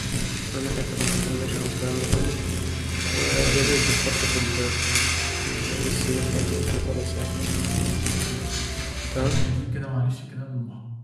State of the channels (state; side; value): identical; both; correlation 1.00